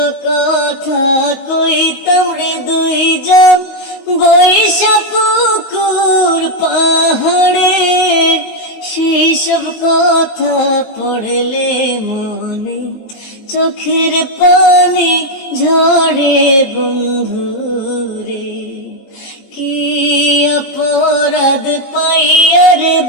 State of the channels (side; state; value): right; late; 19 ms